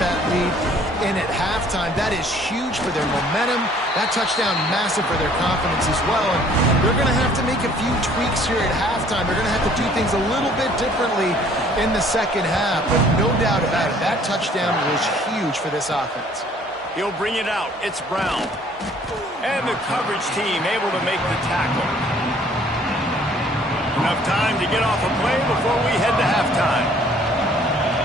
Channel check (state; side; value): normal; both; correlation 0.57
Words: that lead in at halftime. That is huge for their momentum. That touchdown, massive for their confidence as well. And they're going to have to make a few tweaks here at halftime. They're going to have to do things a little bit differently in the 2nd half. But no doubt about it, that touchdown was huge for this offense. He'll bring it out. It's Brown. And the coverage team able to make the tackle. Enough time to get off a play before we head to halftime.